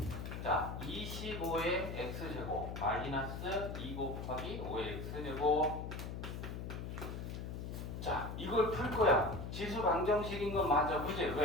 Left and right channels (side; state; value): left; noise; hum, 6 dB below the sound